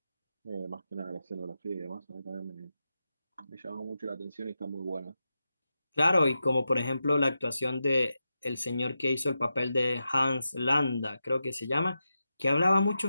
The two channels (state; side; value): inverted; both; correlation -0.89